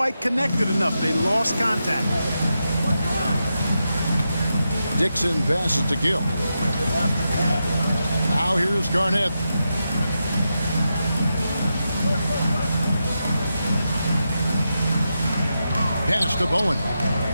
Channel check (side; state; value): both; inverted; correlation -0.87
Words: connected enough. They lost contact. Dixon passes to Gill. Now here's Garnett. Pass to Bowen.